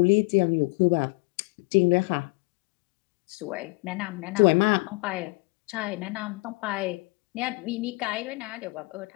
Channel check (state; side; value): quieter; right; 28.1 dB